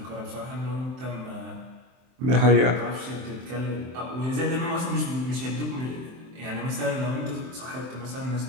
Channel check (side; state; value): left; late; 23 ms